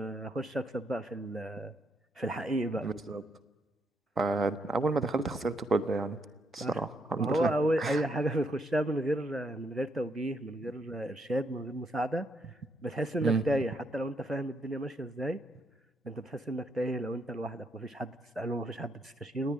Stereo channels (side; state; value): both; normal; correlation 0.76